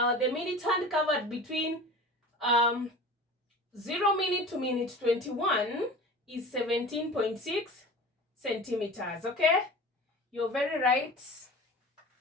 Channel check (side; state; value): both; normal; correlation 0.37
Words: the minute hand covered between 0 minute to minute 21 is 17.6 centimeters, okay? You're very right.